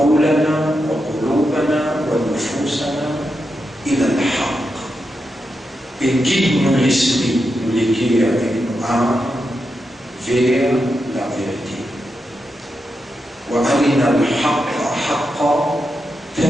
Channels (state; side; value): normal; both; correlation 0.86